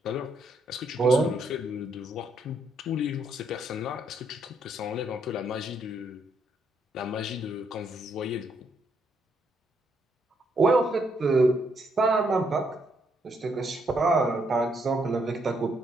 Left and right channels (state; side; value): normal; both; correlation 0.74